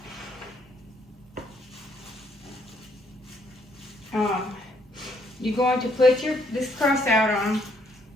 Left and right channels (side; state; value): both; normal; correlation 0.69